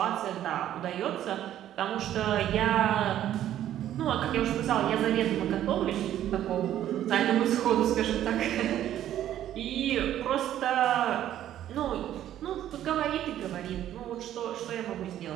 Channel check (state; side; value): quieter; left; 11.8 dB